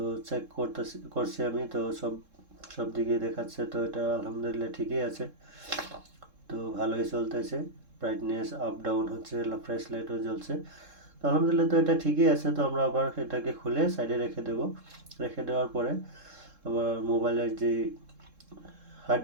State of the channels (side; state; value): left; late; 3.7 ms